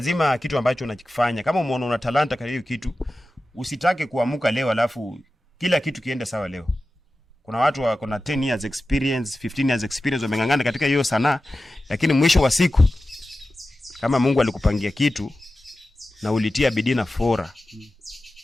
kitu ambacho unakifanya, kama umeona una talanta kwa hiyo kitu, usitake kuamuka leo alafu kila kitu kiende sawa leo. Kuna watu wako na 10 years experience, 15 years experience, wamengangana katika hiyo sanaa, lakini mwisho wa siku kama Mungu alikupangia kitu na ulitia bidii na fora,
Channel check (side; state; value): both; normal; correlation 0.94